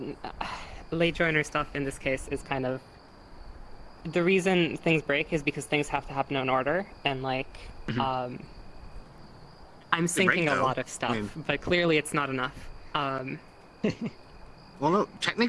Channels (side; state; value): both; identical; correlation 1.00